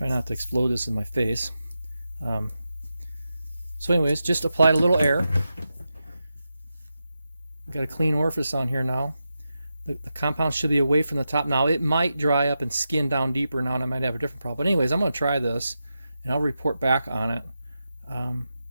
not to explode this in my face. So anyways, just applied a little air. Got a clean orifice on here now. The compound should be away from the top. Now it might dry up and skin down deeper now, and I might have a different problem. But anyways, I'm going to try this, and I'll report back on it.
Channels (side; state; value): both; inverted; correlation -0.89